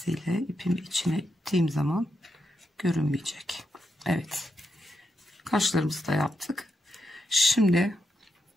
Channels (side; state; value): both; normal; correlation 0.84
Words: ipimi içine ittiğim zaman görünmeyecek. Evet. Kaşlarımızı da yaptık. Şimdi